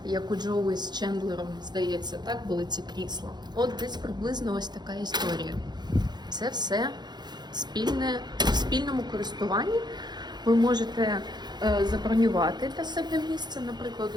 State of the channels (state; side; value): late; left; 0.21 ms